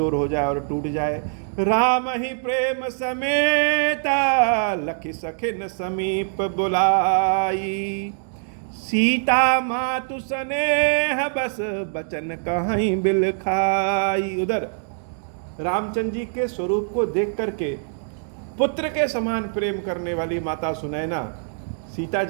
हो जाए और टूट जाए। राम ही प्रेम समेता लखि सखिन समीप बुलाई, सीता मातु स्नेह बस बचन कहीं बिल खाई। उधर रामचंद्र जी के स्वरूप को देख करके पुत्र के समान प्रेम करने वाली माता सुनैना, सीता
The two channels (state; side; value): silent; left; digital silence